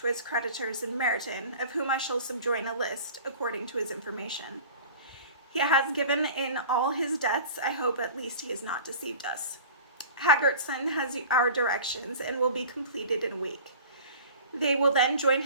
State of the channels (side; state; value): both; inverted; correlation -0.41